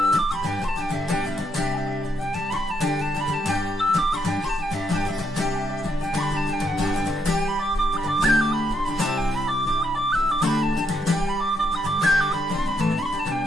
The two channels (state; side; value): normal; both; correlation 0.77